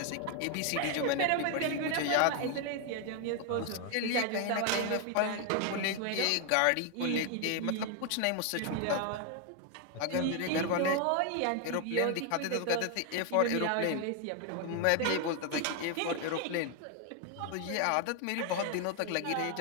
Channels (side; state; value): both; different; correlation 0.01